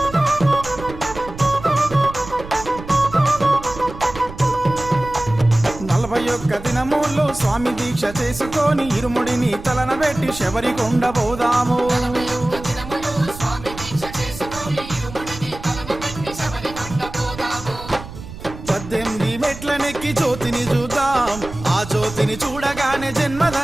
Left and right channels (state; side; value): noise; right; rumble, 13 dB below the sound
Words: నలభై ఒక్క దినముల్లో స్వామి దీక్ష చేసుకొని ఇరుముడిని తలన పెట్టి శబరి కొండ పోదాము ఒక్క దినములు స్వామి దీక్ష చేసుకొని ఇరుముడిని తలను పెట్టి శబరి కొండ పోదాము 18 మెట్లనెక్కి జ్యోతిని చూద్దాం ఆ జ్యోతిని చూడగానే